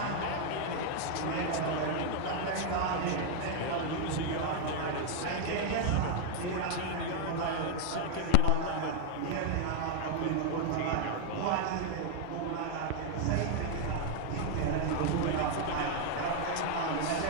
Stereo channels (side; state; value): both; different; correlation 0.00